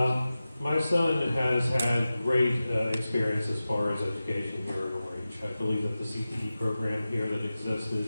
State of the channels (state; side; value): inverted; both; correlation -0.94